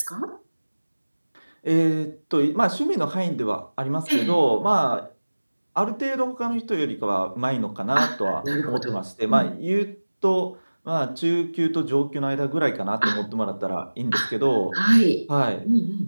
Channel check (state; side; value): inverted; both; correlation -1.00